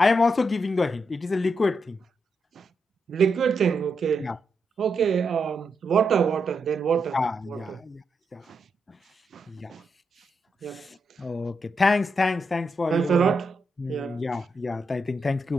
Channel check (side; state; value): both; normal; correlation 0.83